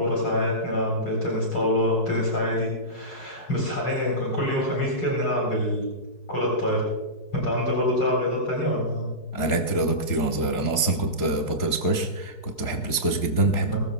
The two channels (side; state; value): right; late; 4.7 ms